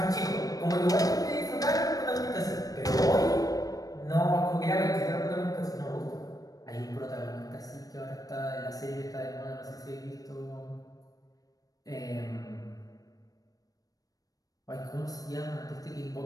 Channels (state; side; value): late; right; 0.18 ms